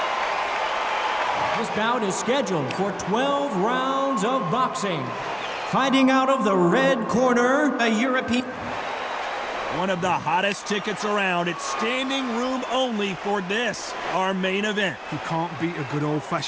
This bout is scheduled for 12 rounds of boxing. Fighting out of the red corner, a European. One of the hottest tickets around. It's standing room only for this, our main event. You can't beat a good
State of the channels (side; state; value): both; identical; correlation 1.00